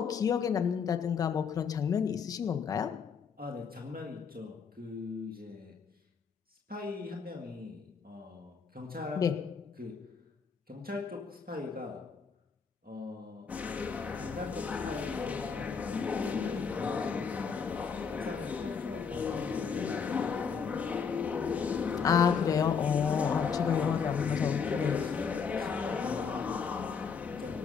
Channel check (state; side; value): quieter; right; 6.1 dB